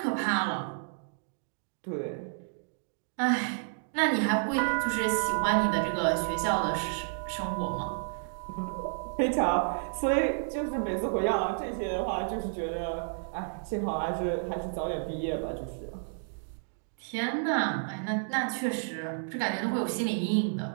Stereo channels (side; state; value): left; silent; digital silence